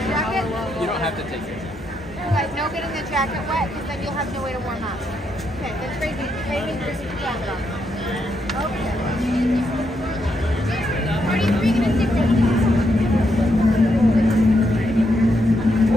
You don't have to take it. Guys, no getting the jacket wet, because then you'll have no way to warm up. Okay, that's crazy. Crazy, crazy jacket on. Okay.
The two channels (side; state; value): both; normal; correlation 0.79